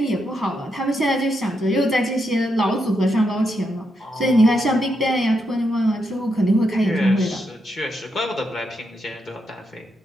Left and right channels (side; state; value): both; normal; correlation 0.82